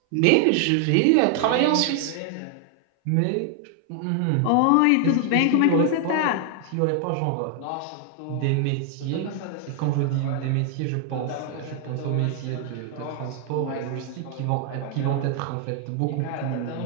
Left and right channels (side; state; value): both; different; correlation 0.00